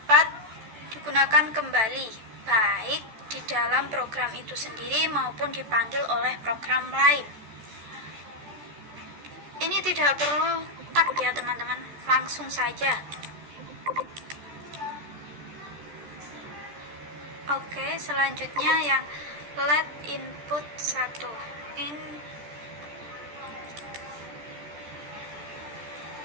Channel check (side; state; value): left; late; 14 ms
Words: digunakan kembali, baik di dalam program itu sendiri maupun dipanggil oleh program lain. Ini tidak perlu tag ya teman-teman, langsung saja. Oke, selanjutnya yang let input 1